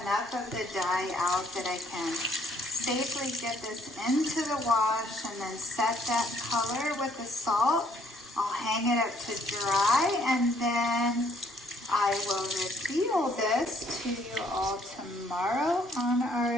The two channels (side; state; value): both; normal; correlation 0.65